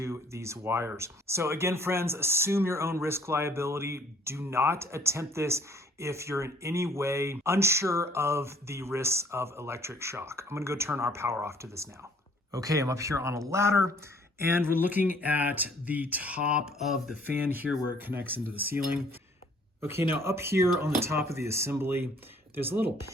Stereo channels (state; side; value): normal; both; correlation 0.59